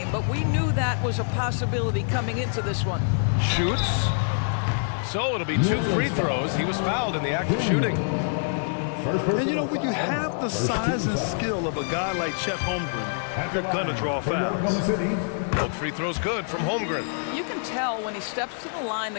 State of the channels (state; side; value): silent; right; digital silence